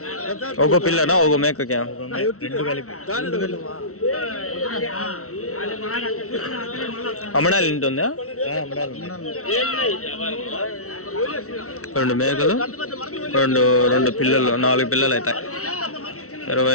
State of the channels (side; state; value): right; late; 0.64 ms